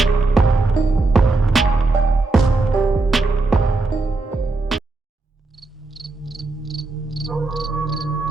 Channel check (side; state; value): left; quieter; 3.4 dB